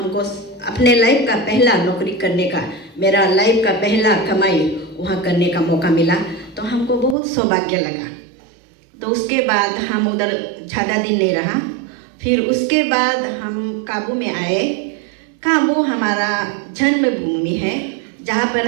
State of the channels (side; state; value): left; drops out; at 7.2 s